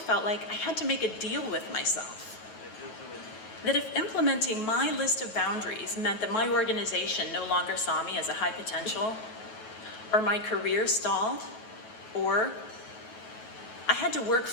like I had to make a deal with myself. That if implementing my list of boundaries meant that my organization no longer saw me as a high potential, or my career stalled, or I had to work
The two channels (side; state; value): right; late; 9.3 ms